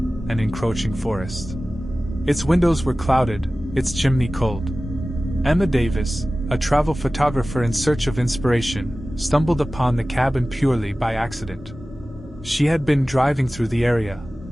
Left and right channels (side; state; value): both; normal; correlation 0.96